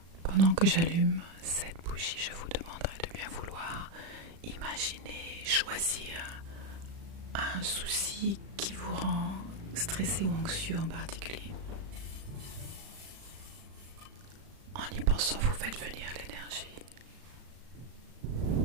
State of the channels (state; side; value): late; left; 36 ms